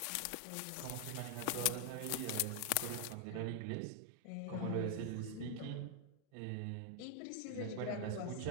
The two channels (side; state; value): both; different; correlation 0.00